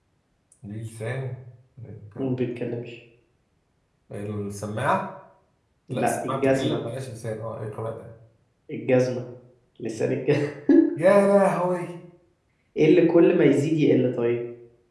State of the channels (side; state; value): both; identical; correlation 1.00